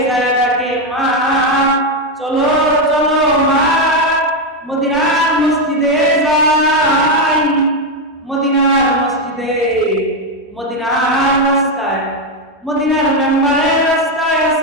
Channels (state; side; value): normal; both; correlation 0.06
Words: যায় ডাকে, মা চলো চলো মা, মদিনার মসজিদে যাই, মদিনার মসজিদে, মদিনার রাস্তায়, মদিনার মেম্বারের রাস্তায়